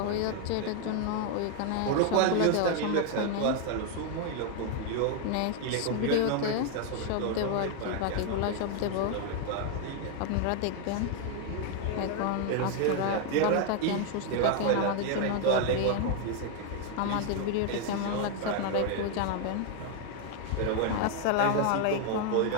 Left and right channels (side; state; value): both; different; correlation 0.00